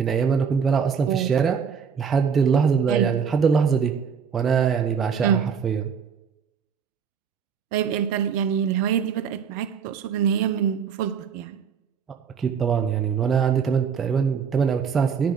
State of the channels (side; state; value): left; quieter; 6.7 dB